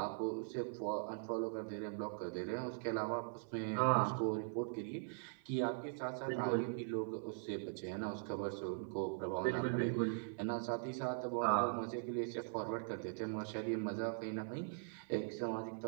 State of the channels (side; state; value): left; silent; 50 dB below the other